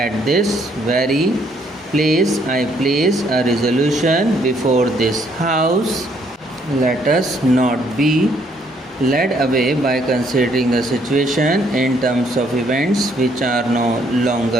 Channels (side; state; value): both; normal; correlation 0.68